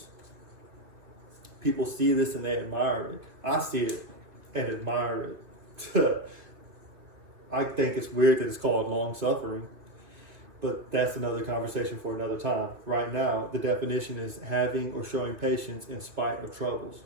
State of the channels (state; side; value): late; left; 2.4 ms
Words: People see this and they admire it. I see it and admire it. I think it's weird that it's called long suffering, but that's another conversation for another time. Right now, the definition is having or showing patience in spite of troubles,